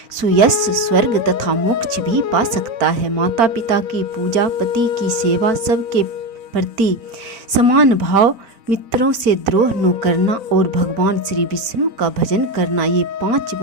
सुयश, स्वर्ग तथा मोक्ष भी पा सकता है। माता पिता की पूजा, पति की सेवा, सबके प्रति समान भाव, मित्रों से द्रोह न करना और भगवान श्री विष्णु का भजन करना, ये 5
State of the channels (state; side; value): late; left; 4.4 ms